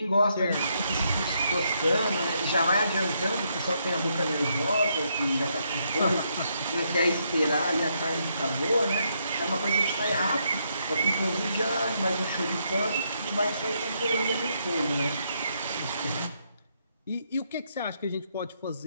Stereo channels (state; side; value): inverted; both; correlation -0.76